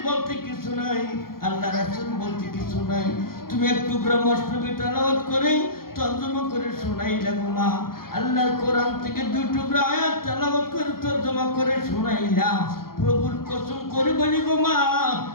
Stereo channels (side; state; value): right; late; 0.92 ms